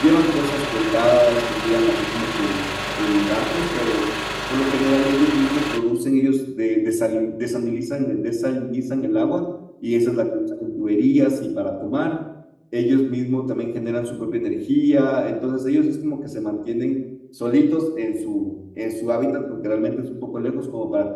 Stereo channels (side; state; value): both; identical; correlation 1.00